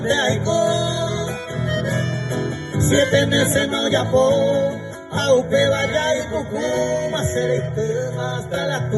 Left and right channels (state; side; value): identical; both; correlation 1.00